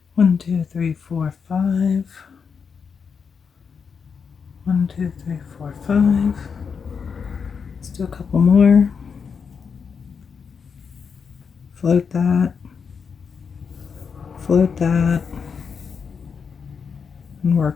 One, two, three, four, five. 1, 2, 3, 4, 5. Let's do a couple more. Float that. Float that. And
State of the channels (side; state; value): right; quieter; 6.1 dB